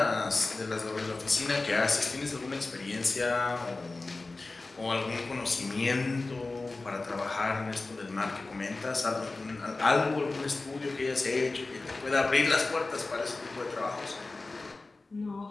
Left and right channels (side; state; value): right; quieter; 3.4 dB